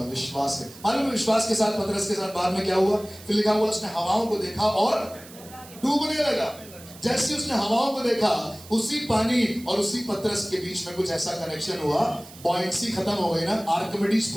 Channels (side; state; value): right; noise; hiss, 19 dB below the sound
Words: विश्वास से। मालूम विश्वास के साथ पतरस के साथ बाद में क्या हुआ? फिर लिखा हुआ उसने हवाओं को देखा और डूबने लगा। जैसे उसने हवाओं को देखा, उसी पानी और उसी पतरस के बीच में कुछ ऐसा कनेक्शन हुआ, बॉयंसी खत्म हो गई ना, आर्किमिडीज